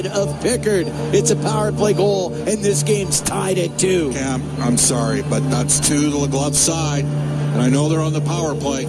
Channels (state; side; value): identical; both; correlation 1.00